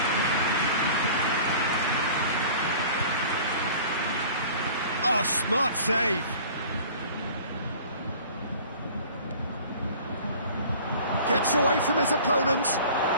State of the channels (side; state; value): both; inverted; correlation -0.45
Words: Oh, smart save. Gets away from his opponent.